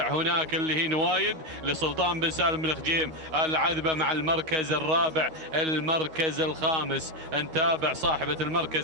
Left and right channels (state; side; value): late; left; 6.5 ms